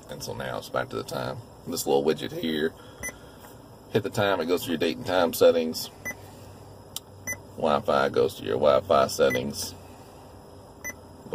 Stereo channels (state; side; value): identical; both; correlation 1.00